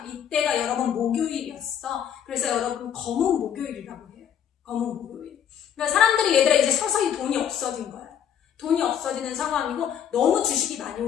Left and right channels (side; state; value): right; quieter; 9.0 dB